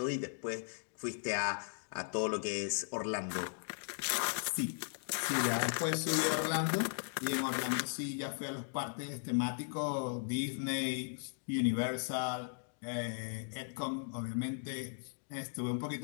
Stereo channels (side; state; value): right; silent; digital silence